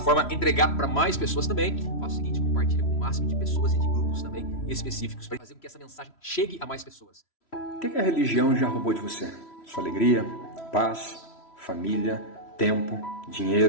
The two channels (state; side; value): late; right; 3.1 ms